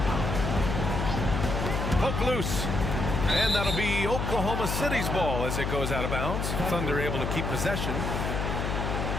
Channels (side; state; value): left; noise; hum, 1 dB below the sound